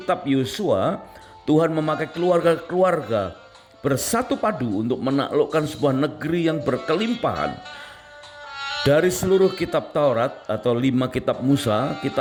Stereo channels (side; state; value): both; identical; correlation 1.00